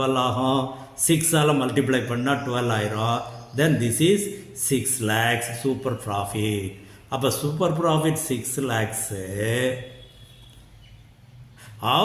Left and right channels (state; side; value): identical; both; correlation 1.00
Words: ஆகும், 6ஆல் மல்டிப்ளை பண்ணால் 12 ஆயிரும். Then this is 6 lakhs super profit. அப்போ super profit 6 lakhs.